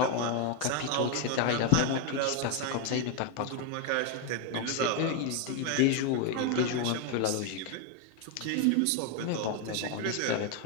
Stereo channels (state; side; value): different; both; correlation 0.01